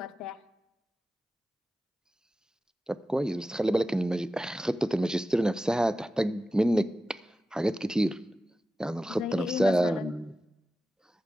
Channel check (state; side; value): normal; both; correlation 0.94